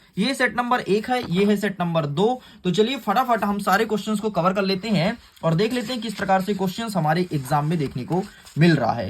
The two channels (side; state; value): both; identical; correlation 1.00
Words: ये सेट नंबर 1 है, ये है सेट नंबर 2। तो चलिए फटाफट हम सारे क्वेश्चंस को कवर कर लेते हैं और देख लेते हैं किस प्रकार से क्वेश्चंस हमारे एग्जाम में देखने को मिल रहा है।